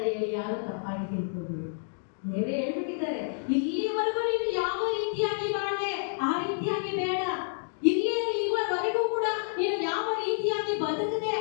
ಹೇಳಿ ಯಾರು ತಪ್ಪಾಗಿ ತಿಳ್ಕೊಂಡು ದೇವರೇ ಹೇಳ್ಬಿಟ್ಟಿದ್ದಾರೆ, ಇಲ್ಲಿವರೆಗೂ ನೀನು ಯಾವ ರೀತಿಯಾಗಿ ಬಾಳೆ ಆ ರೀತಿಯಾಗಿ ಬೇಡ. ಇಲ್ಲಿವರೆಗೂ ಕೂಡ ನೀನು ಯಾವ ರೀತಿಯಾಗಿ ಬದುಕದೆ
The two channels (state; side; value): silent; right; digital silence